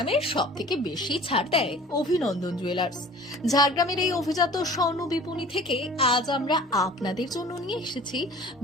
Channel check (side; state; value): both; normal; correlation 0.46